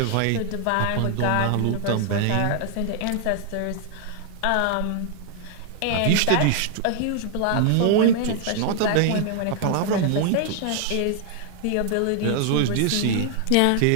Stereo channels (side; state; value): both; different; correlation 0.00